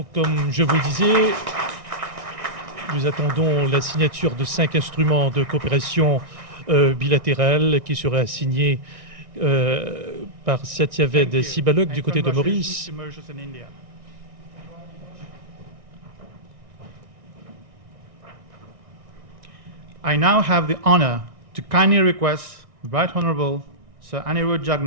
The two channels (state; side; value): late; left; 1.6 ms